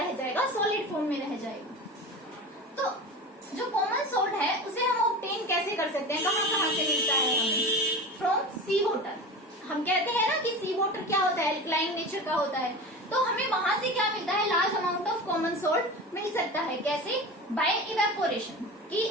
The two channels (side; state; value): both; normal; correlation 0.31